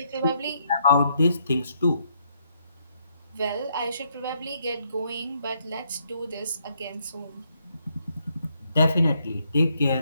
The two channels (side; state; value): both; inverted; correlation -0.75